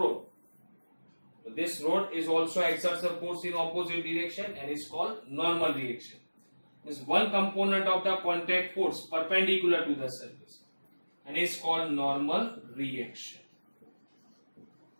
So this road is also exerts a force in opposite direction and is called normal reaction. This one component of the contact force perpendicular to the surface and is called normal reaction.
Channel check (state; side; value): inverted; both; correlation -1.00